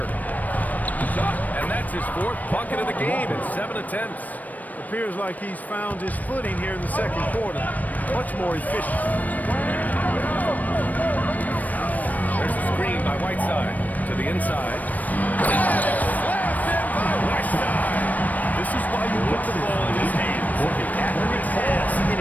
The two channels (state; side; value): late; right; 0.078 ms